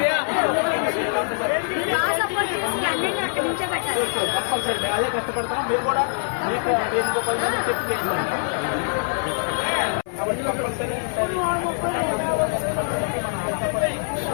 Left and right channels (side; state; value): right; silent; 63 dB below the other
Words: సపోర్ట్ చేసి అన్నింటినీ అక్కడ నిల్చోబెట్టాలి. కంపల్సరీ మేము అదే కష్టపడతాం. మీరు కూడా మీకు ఇంకో 10 మంది చెప్పి చేసుకోండి. కాబట్టి కంపల్సరీ మన ఆంధ్రప్రదేశ్